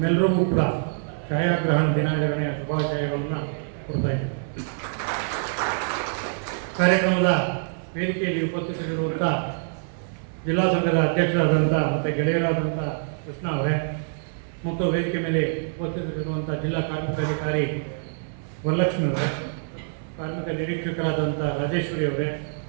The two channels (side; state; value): left; silent; 61 dB below the other